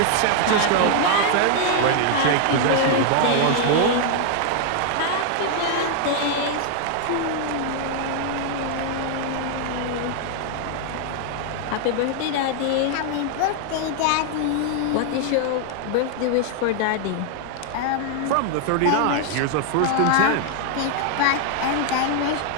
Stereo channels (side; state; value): both; different; correlation 0.00